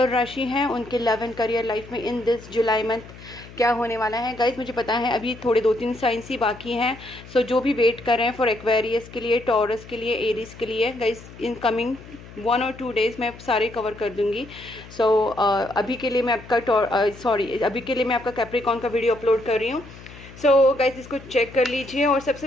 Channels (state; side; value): noise; left; hum, 18 dB below the sound